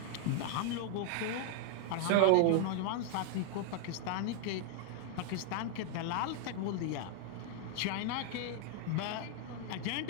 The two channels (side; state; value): both; different; correlation 0.00